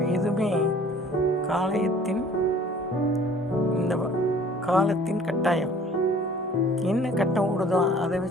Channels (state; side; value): normal; both; correlation 0.51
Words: எதுவுமே இந்த காலத்தின் கட்டாயம். என்ன கட்டம் ஓடுதோ அதை